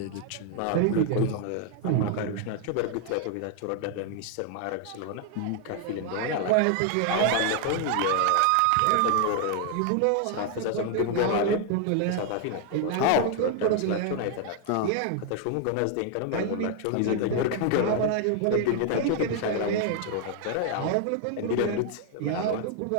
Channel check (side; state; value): both; different; correlation 0.00